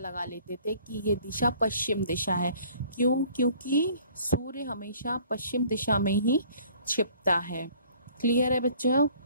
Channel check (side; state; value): both; inverted; correlation -0.55